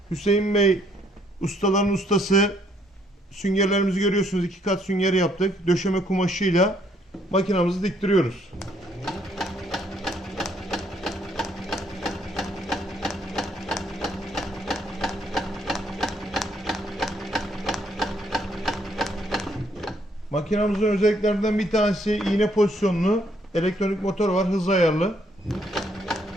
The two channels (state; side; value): normal; both; correlation 0.69